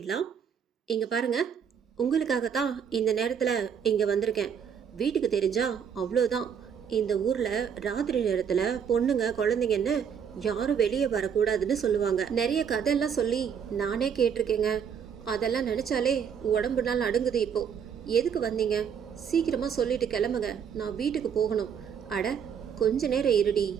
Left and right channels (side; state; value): left; quieter; 7.5 dB